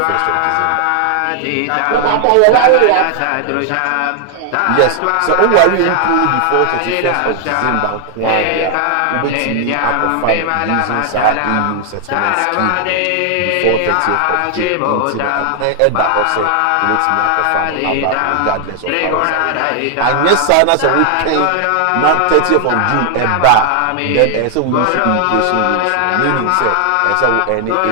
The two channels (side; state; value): both; different; correlation 0.00